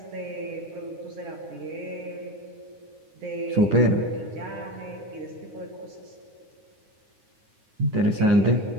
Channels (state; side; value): late; left; 9.7 ms